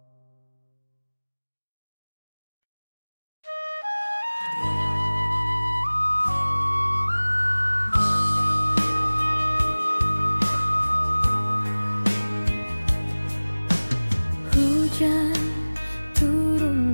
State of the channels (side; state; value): both; inverted; correlation -1.00